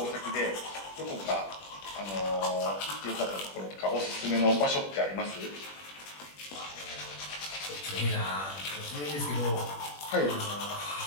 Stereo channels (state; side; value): late; right; 21 ms